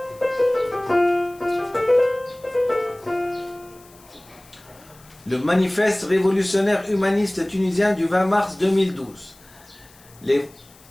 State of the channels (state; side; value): noise; left; hiss, 26 dB below the sound